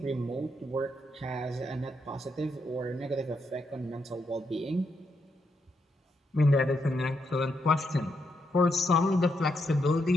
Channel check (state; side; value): normal; both; correlation 0.80